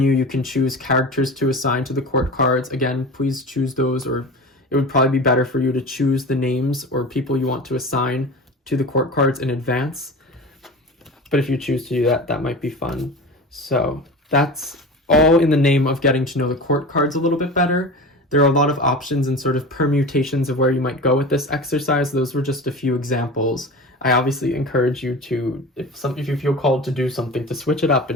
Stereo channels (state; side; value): normal; both; correlation 0.32